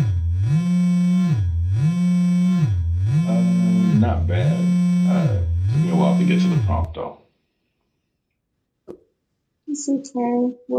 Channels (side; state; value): both; identical; correlation 1.00